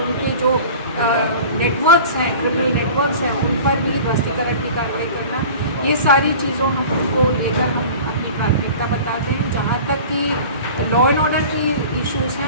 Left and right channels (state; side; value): inverted; both; correlation -0.40